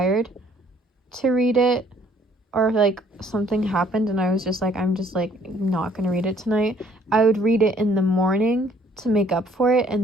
to read it, or like something happened and I was just like, I'm just like not gonna read it tonight, I would read it in the morning to make up for it,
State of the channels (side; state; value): both; normal; correlation 0.61